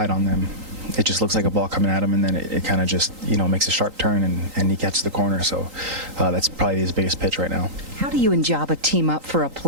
on them, it just looks like a ball coming at him, and then it kind of just, makes a sharp turn, and he catches the corner. So that's probably his biggest pitch right now. How do you and Jabba team up for a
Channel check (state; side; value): late; left; 3.8 ms